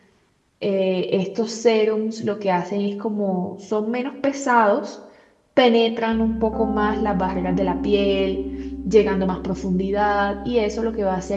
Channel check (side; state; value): both; identical; correlation 1.00